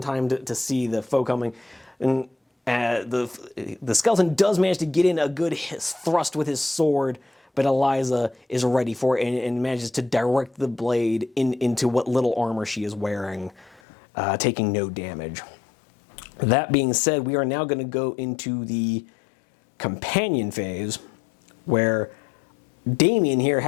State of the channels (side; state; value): right; drops out; at 13.8 s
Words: time to see the foe coming. And the skeleton does manage to get in a good thrust with his sword, but Eliza is ready for it and manages to direct the blade into what little armor she is wearing, taking no damage. That being said, we are now going to go into the companion phase, where Damien here,